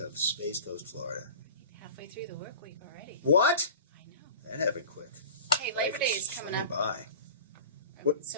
Space Coast, Florida. Halfway through the work week already. What? I know. That happened quick. Hey, Labor Day is coming up. By.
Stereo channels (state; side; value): inverted; both; correlation -0.37